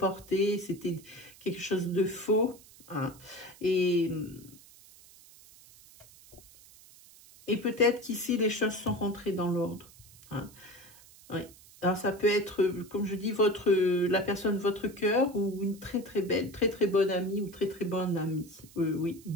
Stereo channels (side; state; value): right; noise; hiss, 23 dB below the sound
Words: c'était quelque chose de faux. Hein. Et peut-être qu'ici, les choses sont rentrées dans l'ordre. Hein. Oui. Alors, ça peut être, comme je dis, la personne de votre cœur ou une très belle, très bonne amie ou très bonne amie. Oui,